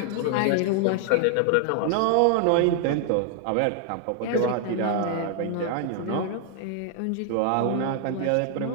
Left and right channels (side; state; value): both; different; correlation 0.00